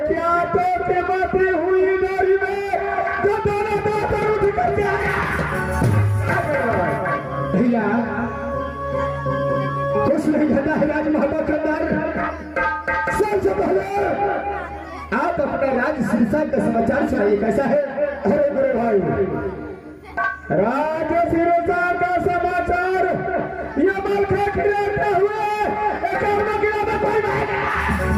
क्या तो कीमती हुई गाड़ी में जो दोनों दांत उठ करके आया भैया। कुछ नहीं घटा है राज महबा करदार। सबसे पहले आप अपना राज सिरसा का समाचार सुनाइए कैसा है। अरे मेरे भाई राज सिरसा का समाचार ये मलखा खिलाते हुए एक में कोई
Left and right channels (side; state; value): both; identical; correlation 1.00